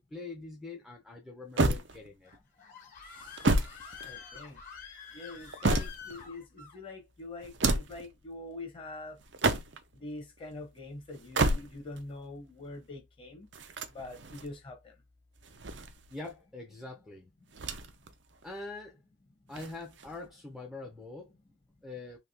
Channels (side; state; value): both; normal; correlation 0.40